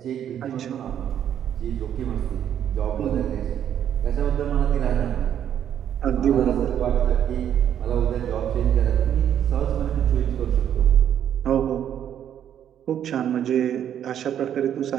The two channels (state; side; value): quieter; left; 9.8 dB